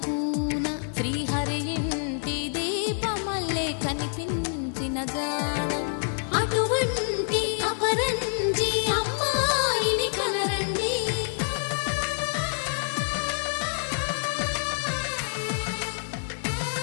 కూన శ్రీహరి ఇంటి దీపమల్లే కనిపించిన జాడ అటువంటి అపరంజి అమ్మాయిని కనరండి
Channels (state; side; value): silent; right; digital silence